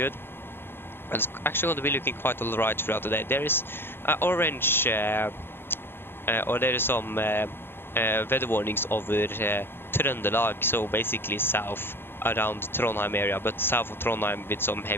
And it's actually going to be looking quite alright throughout the day. There is orange, or there is some weather warnings over Trøndelag, so basically south around Trondheim area, but south of Trondheim with some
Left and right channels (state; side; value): late; right; 0.11 ms